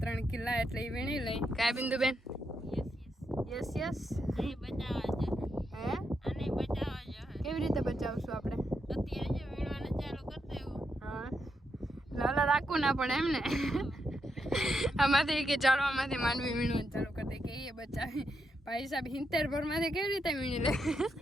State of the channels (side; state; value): both; normal; correlation 0.82